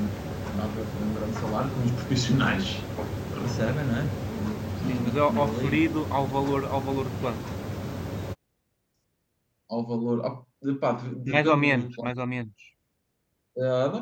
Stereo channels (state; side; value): identical; both; correlation 1.00